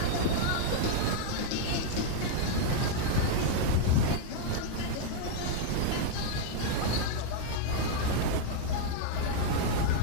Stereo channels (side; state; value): both; different; correlation -0.01